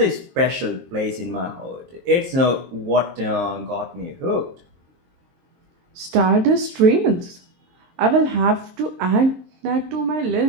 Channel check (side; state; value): left; late; 23 ms